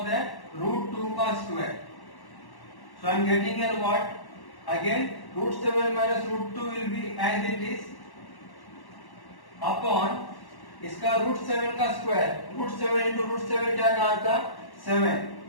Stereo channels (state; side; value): late; right; 1.1 ms